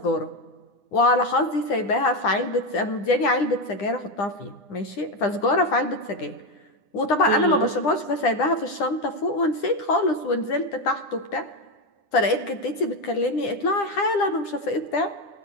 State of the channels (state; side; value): late; right; 9.9 ms